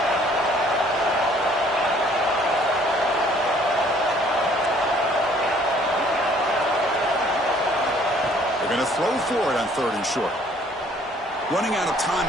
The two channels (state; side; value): normal; both; correlation 0.59